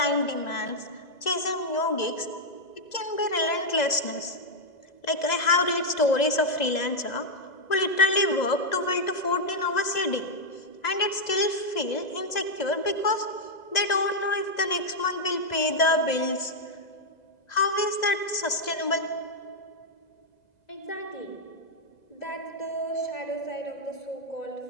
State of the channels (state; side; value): late; right; 2.0 ms